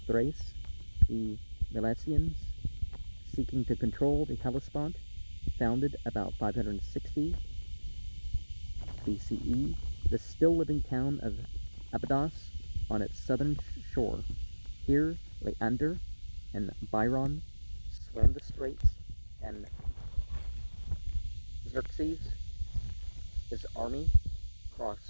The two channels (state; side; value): inverted; both; correlation -1.00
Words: the Milesians, seeking to control the Hellespont, founded about 560 BCE, the still-living town of Abydos on its southern shore. Here, Leander and Byron swam the straits, and Xerxes, his army,